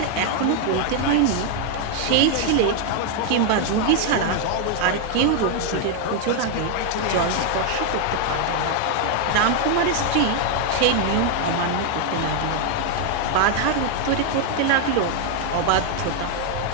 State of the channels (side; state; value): both; different; correlation 0.00